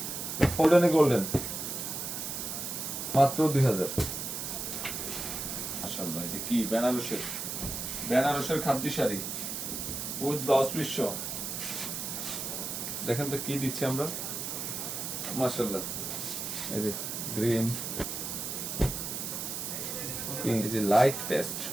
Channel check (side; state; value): right; noise; hiss, 4 dB below the sound